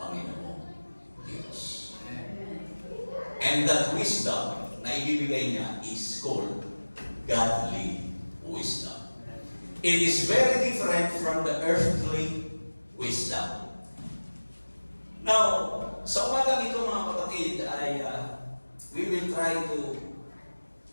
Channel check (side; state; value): both; inverted; correlation -1.00